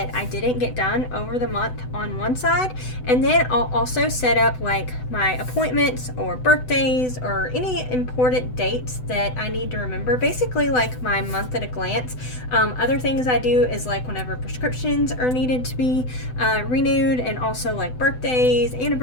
I didn't get done over the month on one side, and then I'll also set up like my appointments or birthdays or any important dates that I need to remember, basically like my month at a glance. Other things I do is like whenever prescriptions are needed to be renewed, and also like birthdays,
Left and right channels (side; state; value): right; late; 7.9 ms